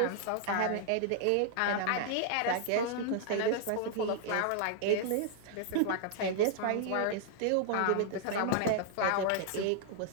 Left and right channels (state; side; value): different; both; correlation -0.01